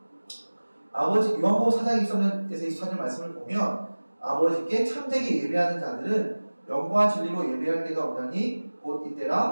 아버지 요한복음 4장 23절에서 24절 말씀을 보면 아버지께 참되게 예배하는 자들은 영과 진리로 예배할 때가 오나니 곧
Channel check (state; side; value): inverted; both; correlation -1.00